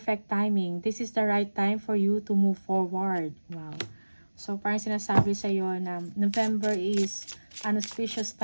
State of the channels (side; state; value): both; inverted; correlation -1.00